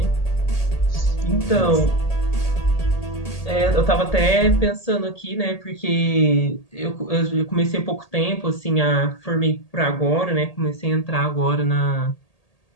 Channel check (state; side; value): late; right; 1.8 ms